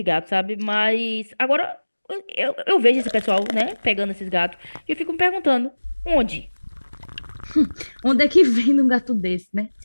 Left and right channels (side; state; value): both; inverted; correlation -1.00